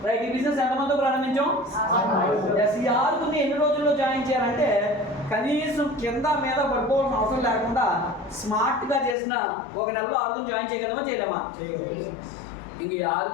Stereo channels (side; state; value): right; drops out; at 9.2 s